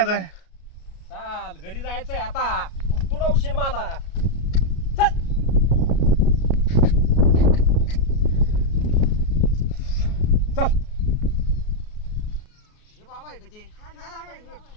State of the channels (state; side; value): late; right; 33 ms